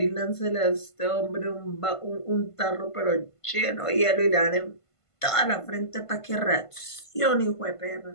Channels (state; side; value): late; right; 1.5 ms